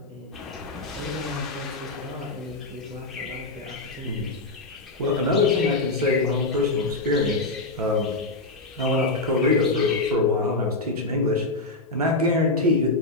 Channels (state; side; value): quieter; right; 3.0 dB